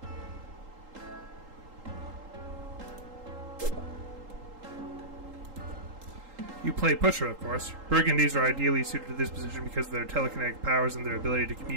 You play Pusher, of course. Burgundies are ideally suited to this position because of their telekinetic powers and their ability to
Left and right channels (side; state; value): left; late; 3.8 ms